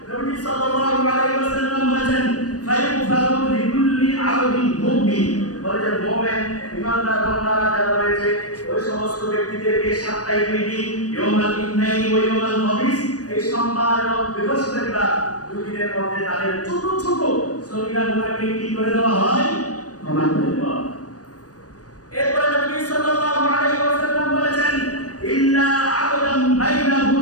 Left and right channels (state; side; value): late; right; 0.68 ms